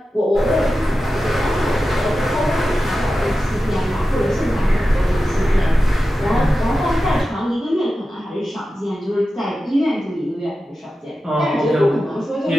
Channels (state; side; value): normal; both; correlation 0.93